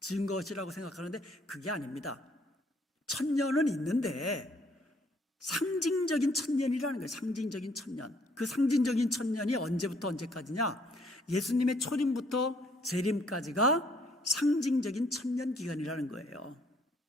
지은 것이라고 생각하는데 그게 아닙니다. 천년은 있는데 상징적인 천년이라는 거예요. 상징적인 천년. 그 상징적인 천년이 언제부터 언제까지냐? 예수님의 초림부터 재림까지가 상징적인 천년 기간이라는 거예요.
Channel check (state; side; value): normal; both; correlation 0.66